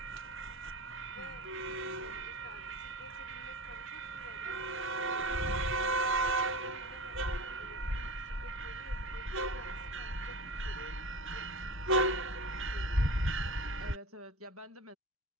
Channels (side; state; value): both; normal; correlation 0.31